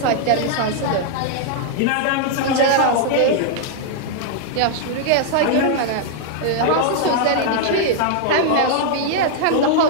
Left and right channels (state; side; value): different; both; correlation -0.01